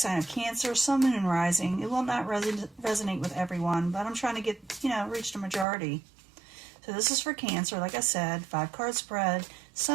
of Cancer, Sun, Moon, and Rising. It will not resonate with everyone, but I'm trying to get, reach the majority. So this is for Cancer, like I said, 5-card spread,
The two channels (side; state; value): left; drops out; at 5.7 s